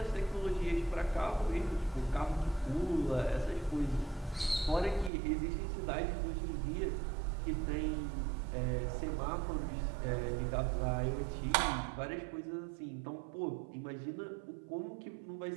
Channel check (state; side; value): drops out; left; at 5.1 s